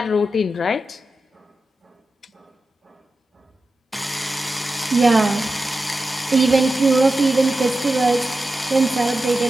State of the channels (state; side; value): normal; both; correlation 0.92